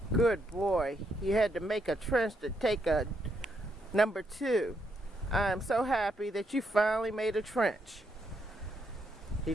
Good boy. You had to make a trench to take a number 2. I'm so happy that you finally made a trench. He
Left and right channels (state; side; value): normal; both; correlation 0.78